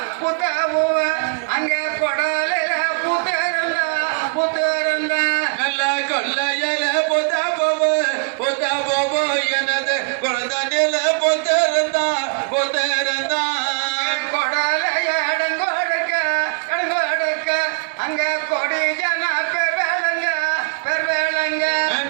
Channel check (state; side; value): quieter; left; 39.7 dB